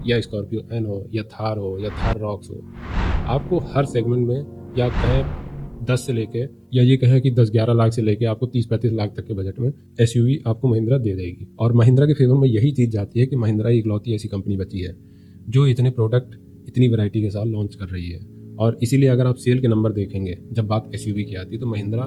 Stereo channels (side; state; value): both; identical; correlation 1.00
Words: या स्कॉर्पियो एन हो या थार हो या थार रॉक्स हो। आपको हर सेगमेंट में, या कहें 10 से लेके, या ये कहें कि 10-11 लाख से लेके आपको 30-35 लाख तक के बजट में एसयूवी आपको महिंद्रा दे देगी। और महिंद्रा के फेवर में यही चीज़ जाती है कि महिंद्रा ही इकलौती ऐसी कंपनी बची है जो इतने प्रोडक्ट इतनी वैरायटी के साथ लॉन्च कर रही है। और इसीलिए अगर आप सेल के नंबर देखेंगे जब बात एसयूवी की आती है तो महिंद्रा